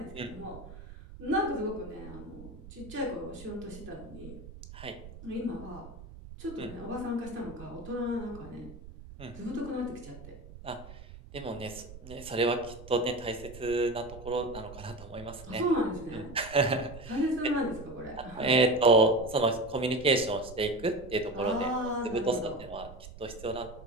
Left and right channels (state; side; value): noise; right; rumble, 15 dB below the sound